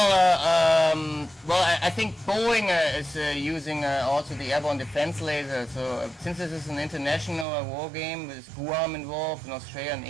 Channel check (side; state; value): left; drops out; at 7.5 s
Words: I think Boeing is using also the airborne defense laser. So since this is an international war game with Guam involved in Australia and